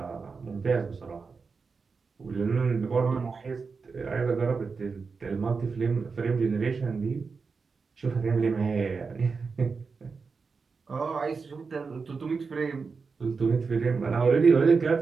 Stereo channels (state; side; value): quieter; left; 4.9 dB